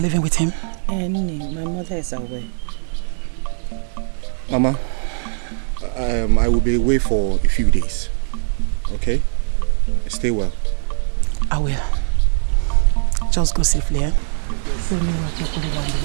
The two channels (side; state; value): left; silent; digital silence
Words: living with him? My mother is aware. Mama, I will be away for a few days. Okay? Stay well. I will. Just go safely, eh?